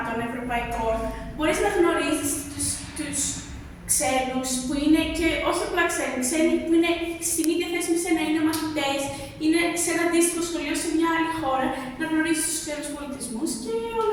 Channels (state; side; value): identical; both; correlation 1.00